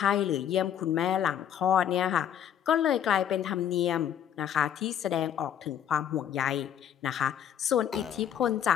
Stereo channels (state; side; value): quieter; right; 9.6 dB